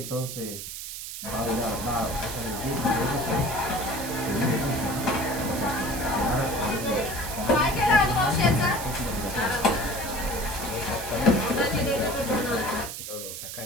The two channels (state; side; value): noise; right; hiss, 8 dB below the sound